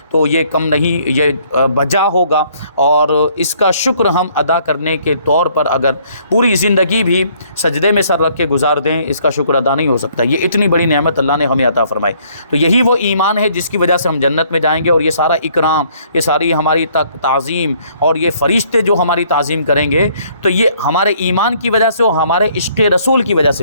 تو یہ کم نہیں، یہ بجا ہوگا، اور اس کا شکر ہم ادا کرنے کے طور پر اگر پوری زندگی بھی سجدے میں سر رکھ کے گزار دیں، اس کا شکر ادا نہیں ہو سکتا۔ یہ اتنی بڑی نعمت اللہ نے ہمیں عطا فرمائی، تو یہی وہ ایمان ہے جس کی وجہ سے ہم جنت میں جائیں گے، اور یہ سارا اکرام، یہ ساری ہماری تعظیم اور یہ فرشتے جو ہماری تعظیم کریں گے، تو یہ ہمارے ایمان کی وجہ سے اور ہمارے عشق رسول کی وجہ سے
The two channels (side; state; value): both; inverted; correlation -0.63